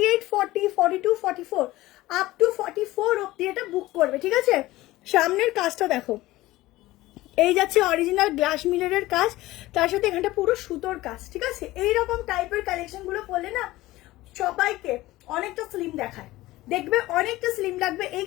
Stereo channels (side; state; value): right; quieter; 17.8 dB